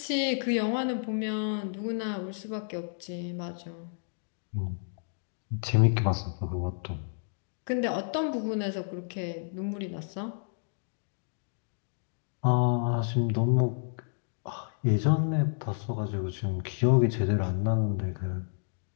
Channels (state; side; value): silent; right; digital silence